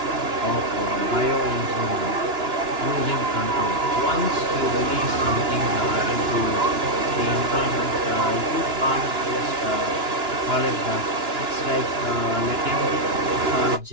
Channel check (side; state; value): left; late; 2.9 ms